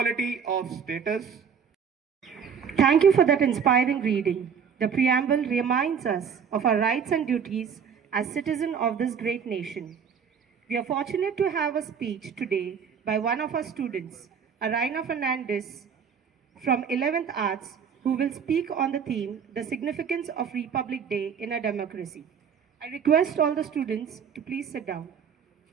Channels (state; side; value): quieter; left; 7.0 dB